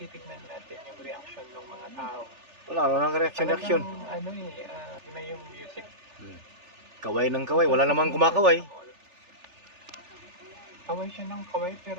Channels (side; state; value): left; late; 3.4 ms